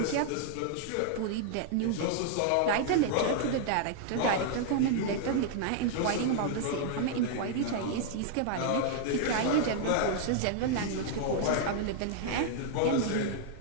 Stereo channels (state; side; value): different; both; correlation -0.01